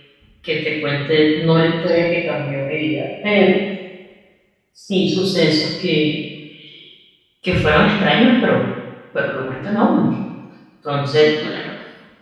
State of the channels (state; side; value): identical; both; correlation 1.00